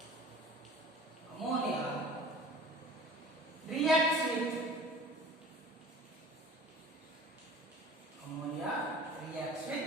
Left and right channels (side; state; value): both; normal; correlation 0.43